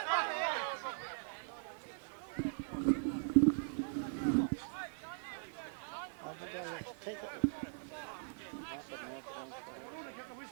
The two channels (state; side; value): silent; left; 51 dB below the other